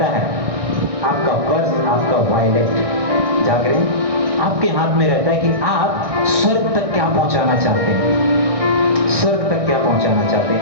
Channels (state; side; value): late; left; 1.6 ms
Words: है आपका पर्स, आपका वॉलेट, जाग रहे हैं? आपके हाथ में रहता है कि आप स्वर्ग तक क्या पहुंचाना चाहते हैं, स्वर्ग तक क्या पहुंचाना चाहते